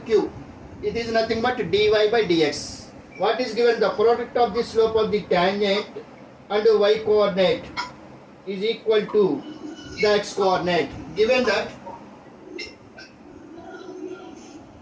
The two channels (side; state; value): both; identical; correlation 1.00